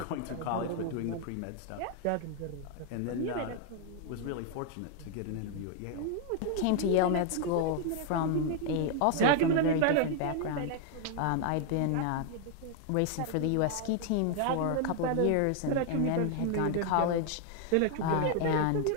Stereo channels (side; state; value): both; different; correlation 0.00